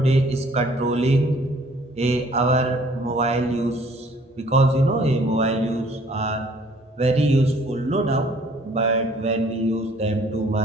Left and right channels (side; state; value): both; normal; correlation 0.58